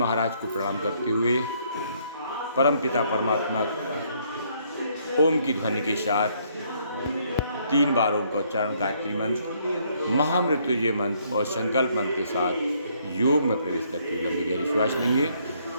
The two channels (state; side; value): inverted; both; correlation -0.68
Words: को प्रणाम करते हुए परम पिता परमात्मा ओम की ध्वनि के साथ 3 बार ओम का उच्चारण, गायत्री मंत्र, महामृत्युंजय मंत्र और संकल्प मंत्र के साथ योग में प्रवेश करते हुए लंबी गहरी श्वास लेंगे।